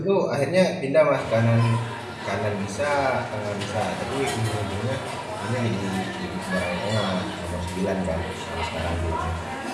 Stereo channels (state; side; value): identical; both; correlation 1.00